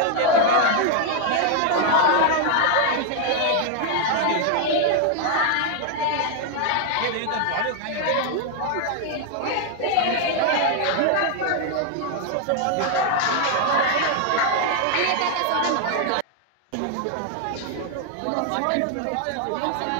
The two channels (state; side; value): different; both; correlation 0.00